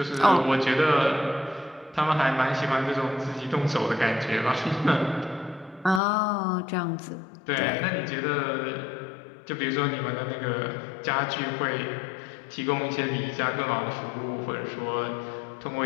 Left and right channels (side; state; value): right; drops out; at 6.0 s